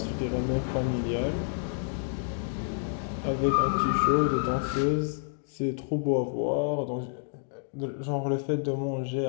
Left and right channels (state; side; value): silent; right; digital silence